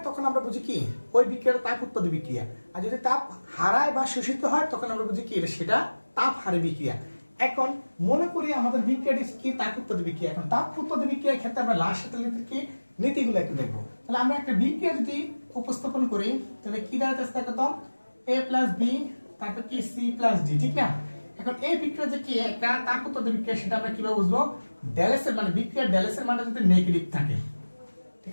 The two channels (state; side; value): inverted; both; correlation -1.00